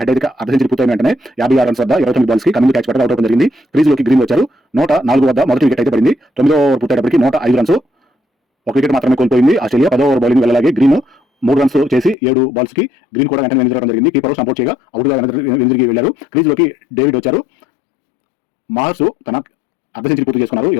హెడ్ అయితే అర్ధ సెంచరీ పూర్తయిన వెంటనే 56 రన్స్ వద్ద 29 బాల్స్ కి కమింగ్ క్యాచ్ పట్టగా అవుట్ అవడం జరిగింది. క్రీజ్ లోకి గ్రీన్ వచ్చారు. 104 వద్ద మొదటి వికెట్ అయితే పడింది. 9 ఓవర్ పూర్తయ్యేటప్పటికి 105 రన్స్. ఒక వికెట్ మాత్రమే కోల్పోయింది ఆస్ట్రేలియా. 10 ఓవర్ బౌలింగ్ వెళ్ళలాగే గ్రీన్ 3 రన్స్ చేసి 7 బాల్స్ కి గ్రీన్ కూడా వెంటనే వెనుదిరగడం జరిగింది. కీపర్ సపోర్ట్ చేయగా అవుట్ గా వెనుదిరిగి వెళ్లారు. క్రీజ్ లోకి డేవిడ్ వచ్చారు. మార్ష్ తన అర్ధ సెంచరీ పూర్తి చేసుకున్నారు.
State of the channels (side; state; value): right; drops out; at 12.2 s